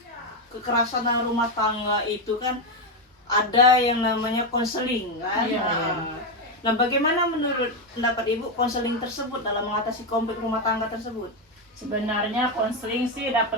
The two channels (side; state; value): both; normal; correlation 0.08